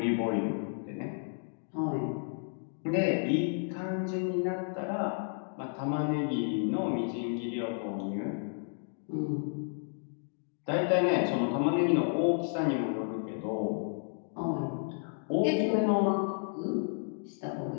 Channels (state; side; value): silent; right; digital silence